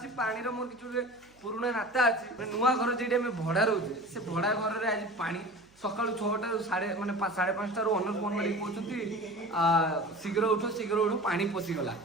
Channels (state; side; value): noise; right; hum, 30 dB below the sound